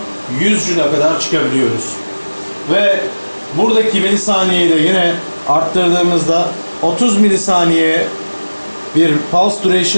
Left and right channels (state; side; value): inverted; both; correlation -1.00